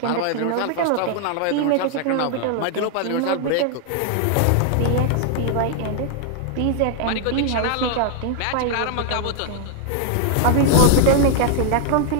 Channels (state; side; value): different; both; correlation 0.00